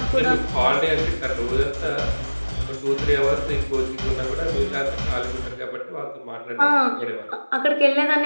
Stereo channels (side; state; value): both; inverted; correlation -1.00